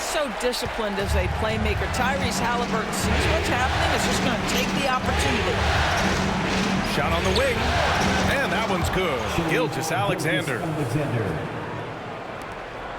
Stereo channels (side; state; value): both; identical; correlation 1.00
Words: so disciplined as a playmaker. Tyrese Halliburton sees what's happening. Is just going to take the opportunity. Shot on the wing. And that one's good. Gilgeous-Alexander.